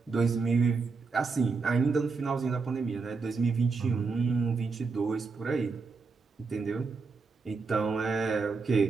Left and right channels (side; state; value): left; quieter; 4.5 dB